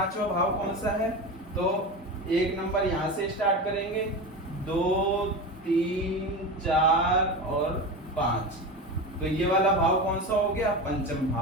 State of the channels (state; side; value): normal; both; correlation 0.24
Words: भाव कौन सा है? तो एक नंबर यहाँ से स्टार्ट करेंगे, 2, 3, 4 और 5। तो ये वाला भाव कौन सा हो गया? पंचम